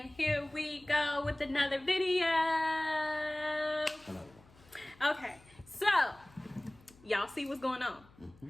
here we go with another video. Okay, so y'all see what's going on.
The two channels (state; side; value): noise; left; hum, 26 dB below the sound